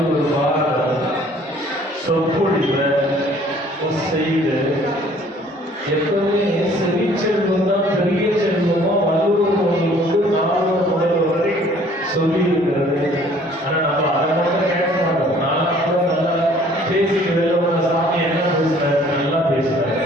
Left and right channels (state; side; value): normal; both; correlation 0.56